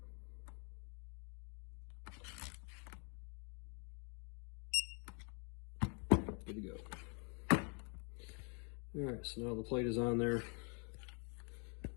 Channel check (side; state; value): right; quieter; 38.0 dB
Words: Good to go. All right, so now the plate is on there.